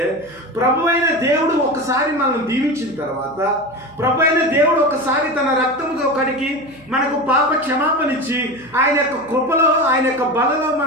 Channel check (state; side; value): noise; right; hum, 26 dB below the sound